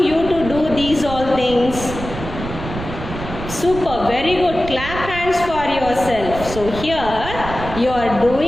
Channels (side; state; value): right; noise; rumble, 9 dB below the sound